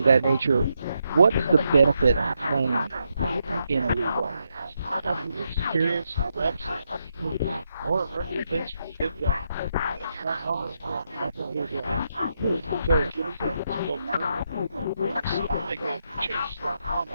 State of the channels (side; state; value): both; inverted; correlation -0.81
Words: that nature, what is the benefit of playing in a league? Experience, reps, or things.